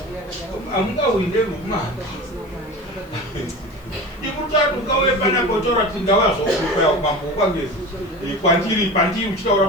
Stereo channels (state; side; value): noise; right; hiss, 30 dB below the sound